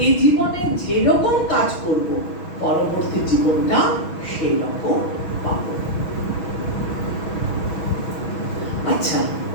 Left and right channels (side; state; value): right; late; 6.2 ms